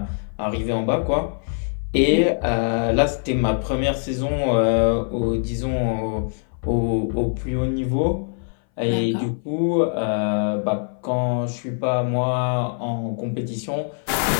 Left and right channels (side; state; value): right; silent; 60 dB below the other